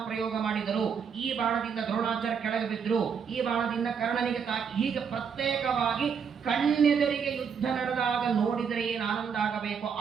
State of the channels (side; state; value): left; quieter; 6.7 dB